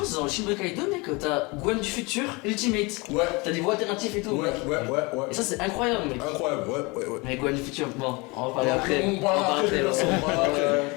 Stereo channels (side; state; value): right; quieter; 26.5 dB